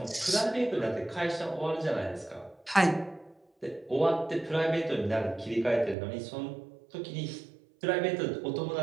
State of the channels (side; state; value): left; drops out; at 6.0 s